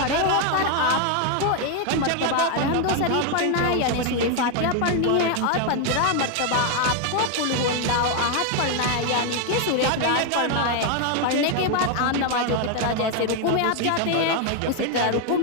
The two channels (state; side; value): different; both; correlation 0.01